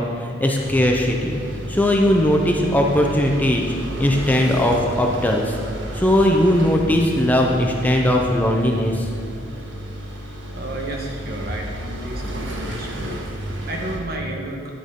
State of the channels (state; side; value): normal; both; correlation 0.72